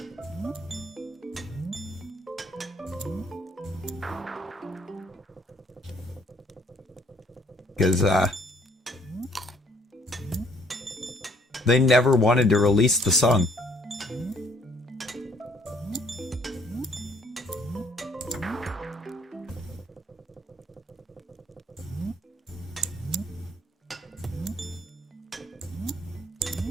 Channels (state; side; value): normal; both; correlation 0.63